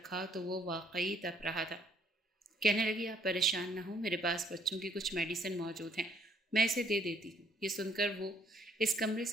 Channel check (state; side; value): normal; both; correlation 0.64